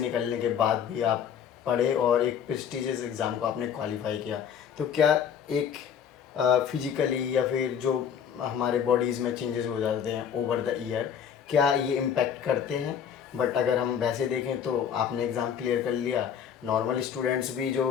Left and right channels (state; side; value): quieter; right; 8.1 dB